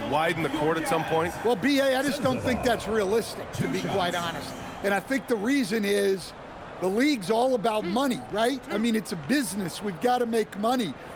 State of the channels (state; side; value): identical; both; correlation 1.00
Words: widen the court at some point? Well, B.A., I just don't think that's realistic, to be quite honest. And I think the reason is the league's all about money, right? I mean, it's a business. We've got to make money.